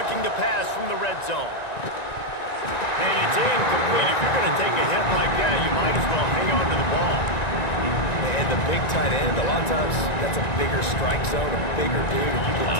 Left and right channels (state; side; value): late; right; 1.9 ms